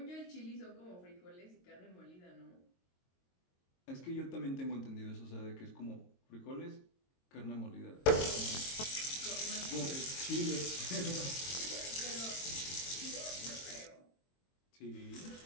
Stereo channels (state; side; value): late; right; 22 ms